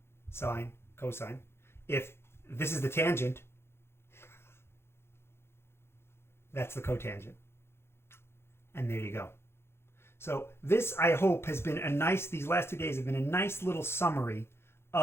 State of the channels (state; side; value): late; right; 0.12 ms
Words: sine, cosine, if this is the tangent, that's the cotangent. And there you go. So this, I hope, has been a nice, these last 2 days have been a nice little summary